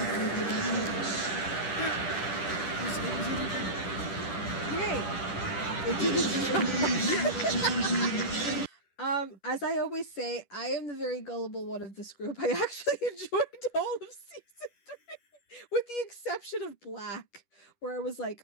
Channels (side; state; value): right; late; 10 ms